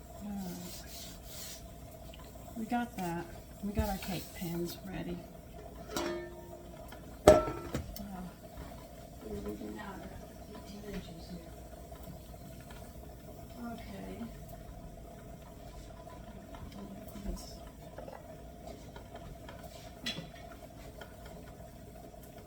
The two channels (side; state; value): both; identical; correlation 1.00